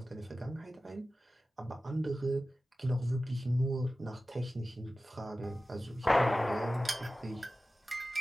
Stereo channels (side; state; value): both; normal; correlation 0.95